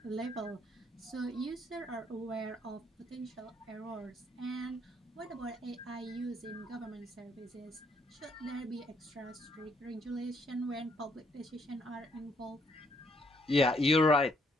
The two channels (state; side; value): normal; both; correlation 0.69